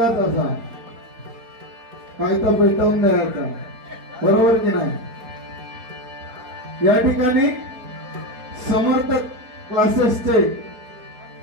असा काय तर पेटवून द्यायचा, बरोबर की नाही? या ठिकाणी समर्थ क्लासेसचे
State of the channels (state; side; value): late; left; 4.2 ms